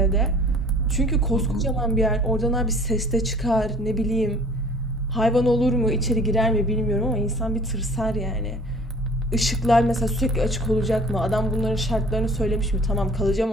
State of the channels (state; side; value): normal; both; correlation 0.50